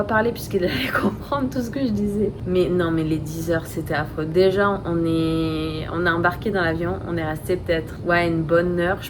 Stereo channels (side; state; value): both; identical; correlation 1.00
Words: parler puisqu'il allait comprendre tout ce que je disais. Mais non, mais les 10 heures c'était affreux. Déjà on a embarqué dans l'avion, on est resté peut-être une bonne heure